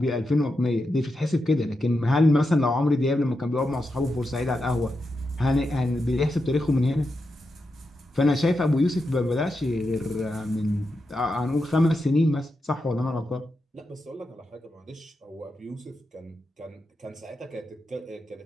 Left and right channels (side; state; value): both; normal; correlation 0.87